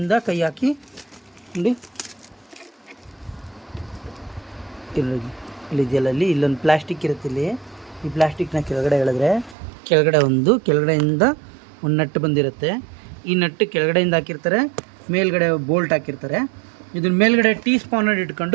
ಕೈ ಹಾಕಿ ನೋಡಿ ಇಲ್ಲಿ ಜಲಲ್ಲಿ ಇಲ್ಲೊಂದು ಪ್ಲಾಸ್ಟಿಕ್ ಇರುತ್ತೆ. ಇಲ್ಲಿ ಈ ಪ್ಲಾಸ್ಟಿಕ್ನ ಕೆಳಗಡೆ ಎಳೆದ್ರೆ ಕೆಳಗಡೆಯಿಂದ ಒಂದು ನಟ್ಟು ಬಂದಿರುತ್ತೆ. ಈ ನಟ್ಟು ಕೆಳಗಡೆಯಿಂದ ಹಾಕಿರ್ತಾರೆ, ಮೇಲ್ಗಡೆ ಬೋಲ್ಟ್ ಹಾಕಿರ್ತಾರೆ. ಇದನ್ನ ಮೇಲ್ಗಡೆ ಟೀ ಸ್ಪಾನರ್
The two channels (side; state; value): left; drops out; at 9.6 s